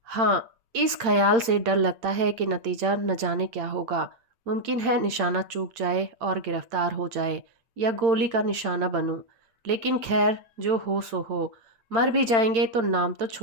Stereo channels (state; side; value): late; left; 8.8 ms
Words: हाँ, इस ख्याल से डर लगता है कि नतीजा न जाने क्या होगा। मुमकिन है निशाना चूक जाए और गिरफ्तार हो जाए या गोली का निशाना बनूं। लेकिन खैर, जो हो सो हो। मर भी जाएंगे तो नाम तो